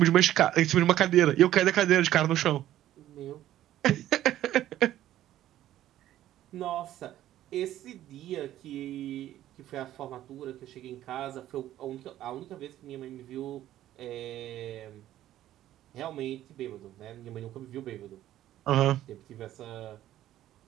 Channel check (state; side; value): quieter; left; 13.1 dB